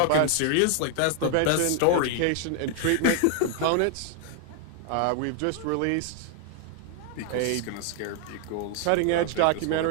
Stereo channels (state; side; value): different; both; correlation 0.00